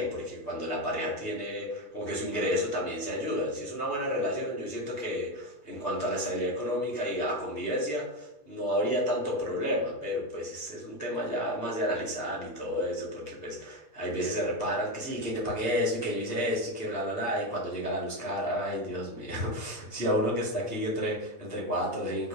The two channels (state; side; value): late; right; 8.4 ms